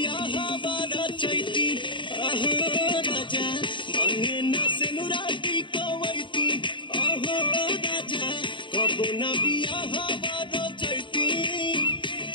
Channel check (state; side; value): late; right; 0.23 ms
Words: बारा चैती आहो राजा मांगे न सेनुराटी कवैती आहो राजा कबो न बियाह बारा चैती।